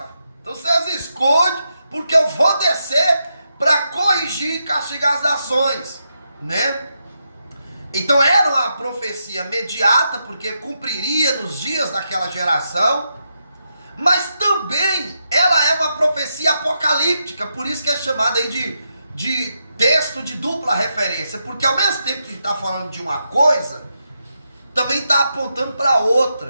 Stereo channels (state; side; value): inverted; both; correlation -0.84